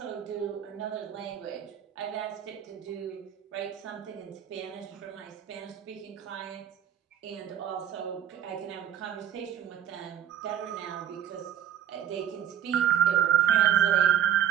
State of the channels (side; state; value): left; quieter; 10.4 dB